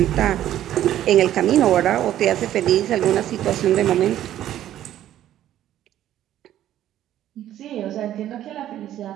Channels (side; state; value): left; quieter; 12.2 dB